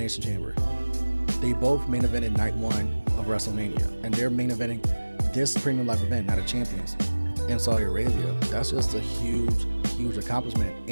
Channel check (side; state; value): both; inverted; correlation -1.00